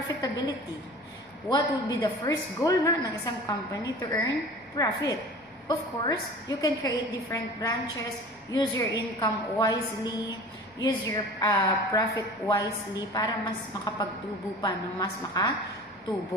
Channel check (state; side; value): normal; both; correlation 0.40